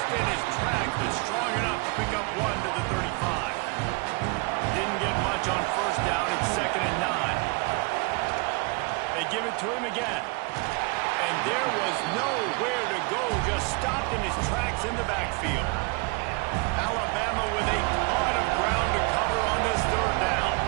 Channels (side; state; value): left; quieter; 29.8 dB